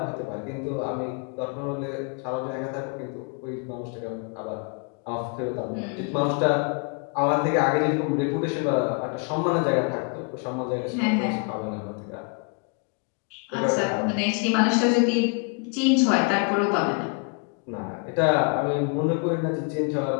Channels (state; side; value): quieter; right; 36.8 dB